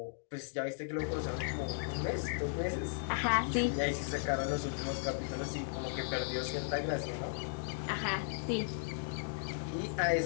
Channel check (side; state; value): right; silent; digital silence